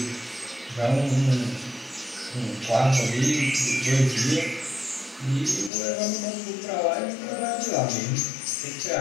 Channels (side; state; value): right; drops out; at 5.7 s